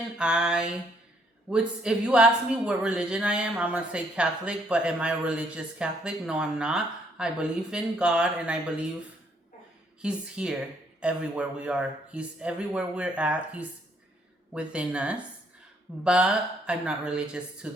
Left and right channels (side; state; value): both; normal; correlation 0.69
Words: I would, if you ask me what religion I am, I'm gonna say Catholic. But am I a religious Catholic? No, I'm not. I believe in God, and I believe He's here everywhere we are. He's everywhere we're at. He's within us. But I'm not religious to